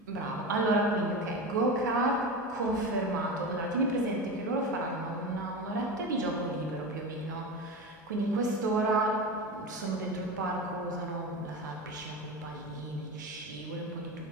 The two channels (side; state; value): both; normal; correlation 0.25